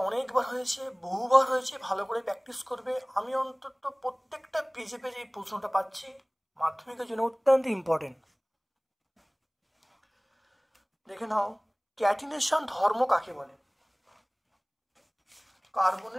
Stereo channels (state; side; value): identical; both; correlation 1.00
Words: অনেকবার হয়েছে, বহুবার হয়েছে, ভালো করে প্র্যাকটিস করবে। আমি অন্তত প্রত্যেকটা পেজে এই প্রশ্নটা পাচ্ছি, মাধ্যমিকের জন্য অত্যন্ত ইম্পর্টেন্ট। দেখে নাও ক্যাটিনেশন ধর্ম কাকে বলে?